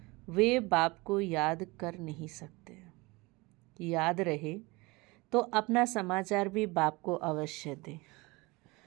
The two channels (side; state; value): left; quieter; 24.0 dB